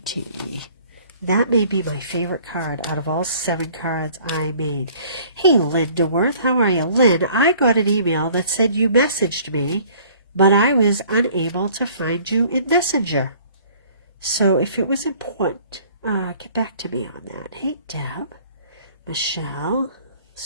That may be my favorite card out of all 7 cards I made. Hey, Linda Worth, how are you? Lynn, I got an email that said you messaged me, but I was unable to find you in Messenger. So if it was important, get back to me on that. Hey, Deb, Michelle,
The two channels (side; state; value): both; inverted; correlation -0.54